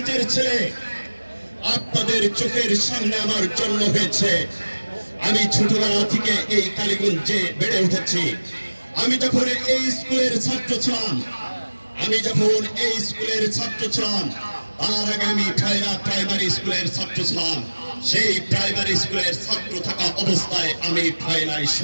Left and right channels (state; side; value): inverted; both; correlation -1.00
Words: ছেলে, আপনাদের চোখের সামনে আমার জন্ম হয়েছে। আমি ছোটবেলা থেকে এই কালীগঞ্জে বেড়ে উঠেছি। আমি যখন এই স্কুলের ছাত্র ছিলাম তার আগে আমি ঠাইরা প্রাইমারি স্কুলের ছাত্র ছিলাম। সেই প্রাইমারি স্কুলের ছাত্র থাকা অবস্থায় আমি ঠাইরায়